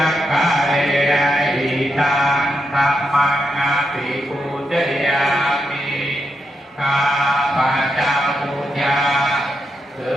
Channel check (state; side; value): normal; both; correlation 0.84